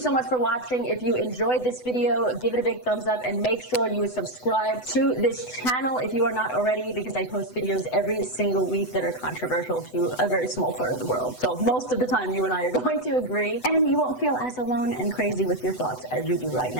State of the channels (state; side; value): late; right; 8.0 ms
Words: much for watching. If you enjoyed this video, give it a big thumbs up and make sure you subscribe to this channel if you are not already, because I post videos every single week that are controversial to a very small part of the world. So most of the time you and I are going to agree, and you won't feel as alone and crazy with your thoughts as you do right